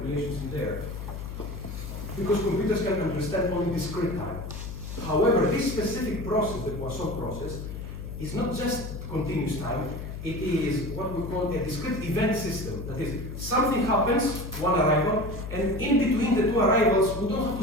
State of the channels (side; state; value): left; noise; hum, 8 dB below the sound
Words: in there. Because computers can understand only discrete time. However, this specific process, the Poisson process, is not just continuous time, it is what we call a discrete event system. That is, something happens, one arrival, and in between the two arrivals, we don't have